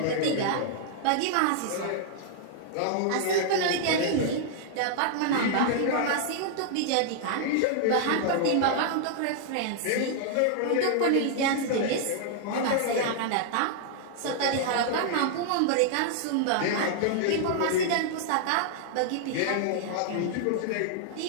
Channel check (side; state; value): both; different; correlation -0.01